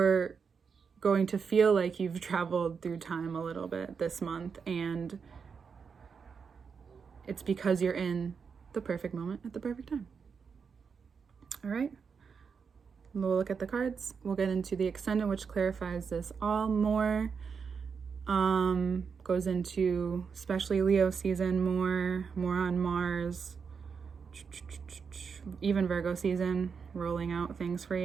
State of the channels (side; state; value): left; quieter; 5.9 dB